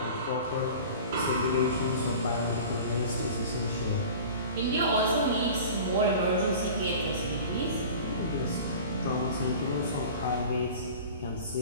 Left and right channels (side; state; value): both; inverted; correlation -0.39